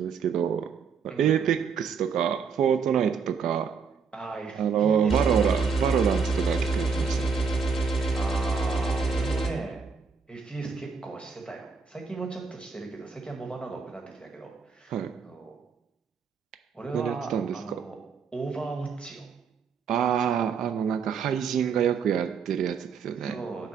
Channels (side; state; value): left; quieter; 5.7 dB